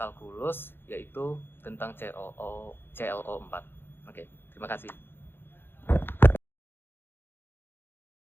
yaitu tentang CLO 4. Oke, terima kasih.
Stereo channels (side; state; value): right; late; 0.10 ms